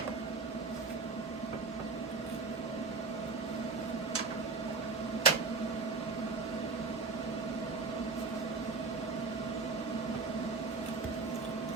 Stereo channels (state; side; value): quieter; left; 4.2 dB